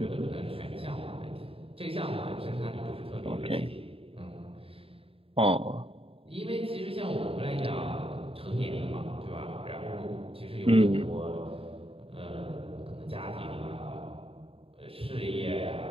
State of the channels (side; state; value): left; late; 0.27 ms